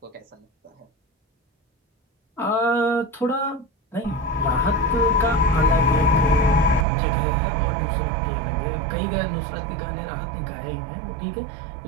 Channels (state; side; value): drops out; left; at 6.9 s